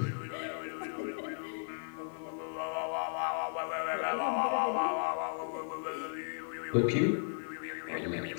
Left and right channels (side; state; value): right; silent; 54 dB below the other